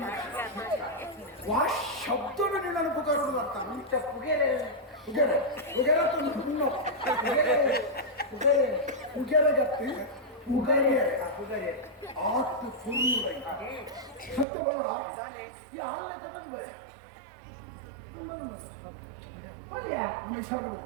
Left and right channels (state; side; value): drops out; left; at 14.5 s